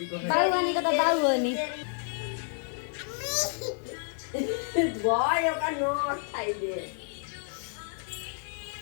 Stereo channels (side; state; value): right; silent; 58 dB below the other